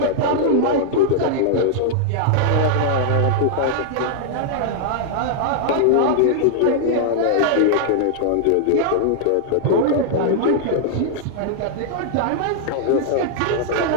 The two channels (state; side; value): different; both; correlation -0.01